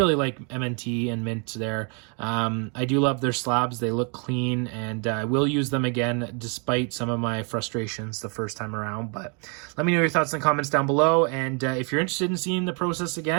like MNT and Mint there. I do love their slabs. They look clean, and I will use them again despite some of my frustrations the first time around. But let me know your thoughts in the comments down below, and if you're interested in seeing the process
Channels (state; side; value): quieter; left; 35.9 dB